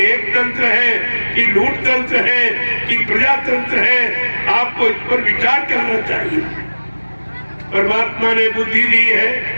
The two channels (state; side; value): inverted; both; correlation -1.00